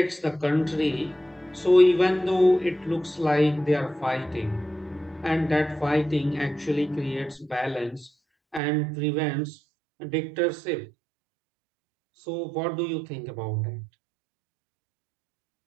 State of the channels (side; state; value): left; drops out; at 8.6 s